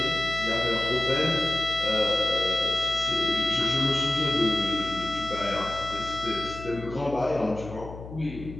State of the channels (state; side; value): noise; left; hum, 13 dB below the sound